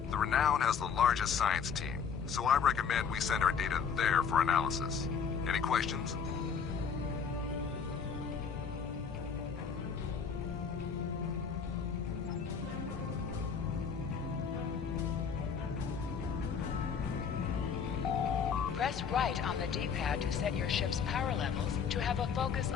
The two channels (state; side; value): quieter; right; 6.5 dB